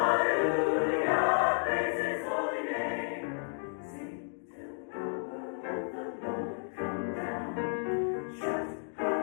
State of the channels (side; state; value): right; silent; digital silence